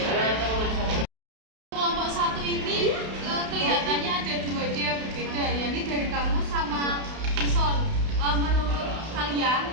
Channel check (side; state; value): left; late; 32 ms